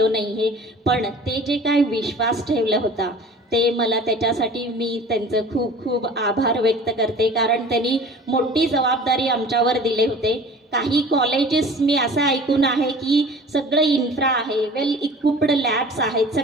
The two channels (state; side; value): normal; both; correlation 0.43